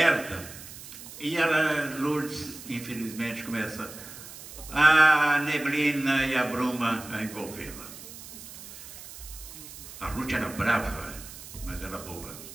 e a Lourdes, infelizmente, começa a neblina e a bruma a envolvê-la. A Ruth era brava, mas era boa.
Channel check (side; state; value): right; noise; hiss, 14 dB below the sound